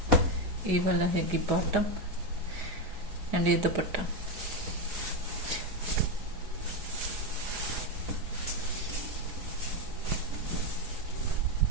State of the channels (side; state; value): left; late; 4.9 ms